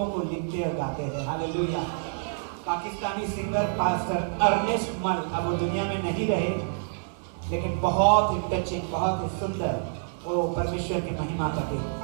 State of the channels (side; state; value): left; silent; 60 dB below the other